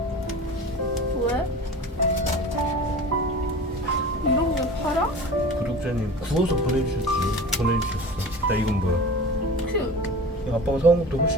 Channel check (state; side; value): normal; both; correlation 0.37